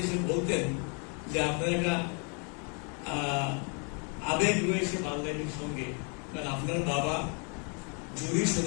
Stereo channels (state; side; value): quieter; right; 37.0 dB